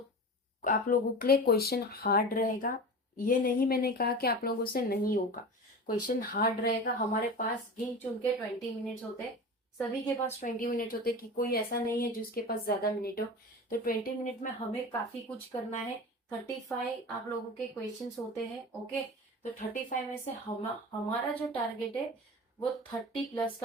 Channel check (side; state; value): both; normal; correlation 0.32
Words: आप लोगों के लिए क्वेश्चन हार्ड रहेगा, ये नहीं मैंने कहा कि आप लोगों से नहीं होगा, क्वेश्चन हार्ड रहेगा। हमारे पास गिन चुन के 20 मिनट्स होते हैं, सभी के पास 20 मिनट होते हैं, कि कोई ऐसा नहीं है जिसके पास ज्यादा मिनट हो। तो 20 मिनट में हमें काफी कुछ करना है। 35 आप लोगों के क्वेश्चन होते हैं। ओके, तो 35 में से हमारा जो टारगेट है वो 30+